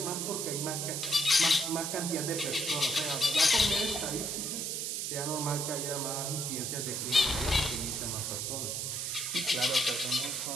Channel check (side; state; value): right; noise; hiss, 2 dB below the sound